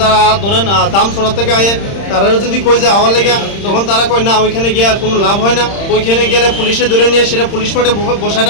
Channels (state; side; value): late; right; 30 ms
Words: যারা ধরেন দাম সরা থেকে আয়ে তারা যদি কই যে আওয়ার লেগে, তখন তারা কয় না ওইখানে গিয়ে আর কোনো লাভ হয় না। ওইখানে গেলে পুলিশে ধরে নিয়ে সেটা পুলিশ মাঠে বসায়